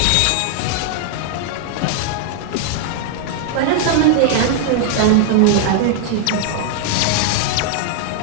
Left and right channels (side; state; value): both; different; correlation 0.00